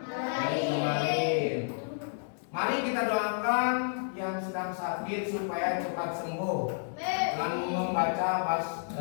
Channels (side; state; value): right; silent; digital silence